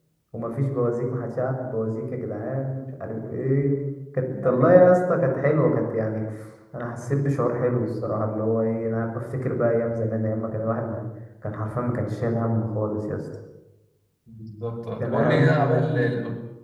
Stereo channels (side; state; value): both; identical; correlation 1.00